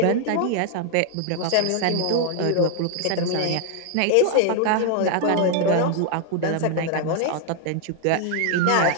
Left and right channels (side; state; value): both; different; correlation 0.00